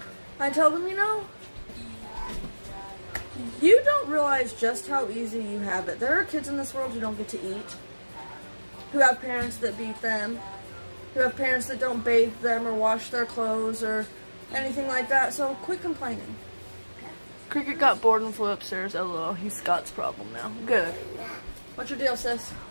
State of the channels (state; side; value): inverted; both; correlation -1.00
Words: I tell them, you know, you don't realize just how easy you have it. There are kids in this world who don't get to eat, who have parents that beat them, who have parents that don't bathe them or wash their clothes or anything like that, so quit complaining. Cricket got bored and flew upstairs. LOL, he's Scott's problem now. Good. What's your deal, sis?